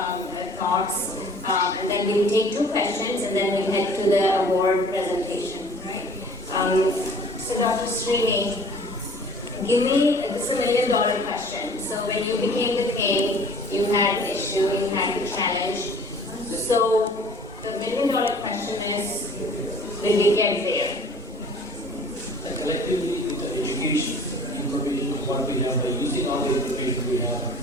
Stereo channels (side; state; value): both; normal; correlation 0.50